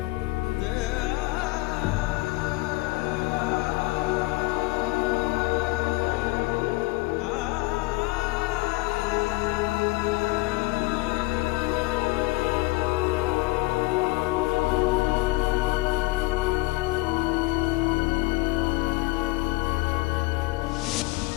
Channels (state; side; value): quieter; right; 22.3 dB